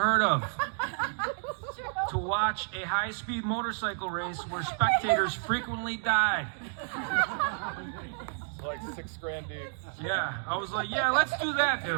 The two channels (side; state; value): left; silent; digital silence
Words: of to watch a high-speed motorcycle race where spectators frequently died. Like $6,000 deep. Yeah, I was like, yeah, let's do that,